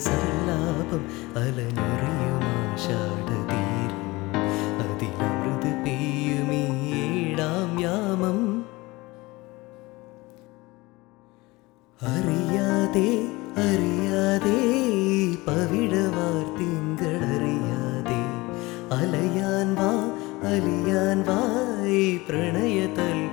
സല്ലാപം, അലഞ്ഞൊറിയുമാഷാഢതീരം, അതിലമൃത് പെയ്യുമീ ഏഴാം യാമം. അറിയാതെ അറിയാതെ പവിഴവാർത്തിങ്കളറിയാതെ അലയാൻ വാ അലിയാൻ വാ,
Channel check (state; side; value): quieter; right; 21.9 dB